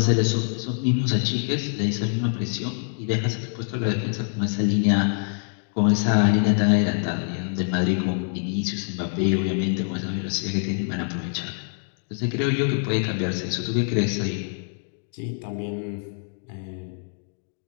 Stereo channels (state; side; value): silent; right; digital silence